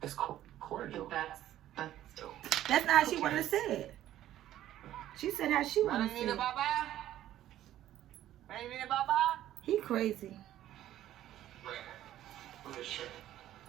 It's cordial. But that's That's not how she wanted to say it. She said how she wanted to say it. He crazy.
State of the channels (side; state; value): left; quieter; 12.9 dB